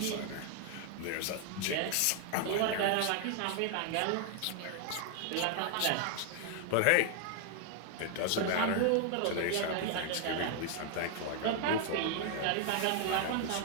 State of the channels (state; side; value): different; both; correlation 0.00